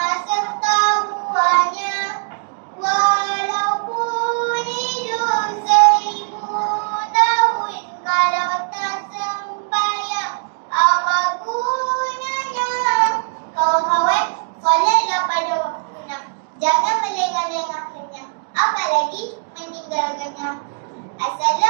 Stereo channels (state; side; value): silent; left; digital silence